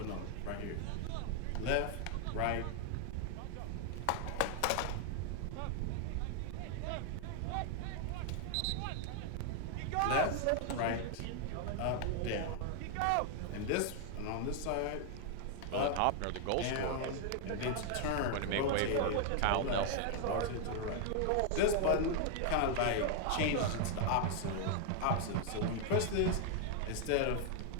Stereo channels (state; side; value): different; both; correlation 0.00